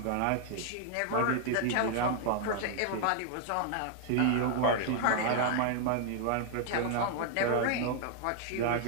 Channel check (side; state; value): both; different; correlation 0.00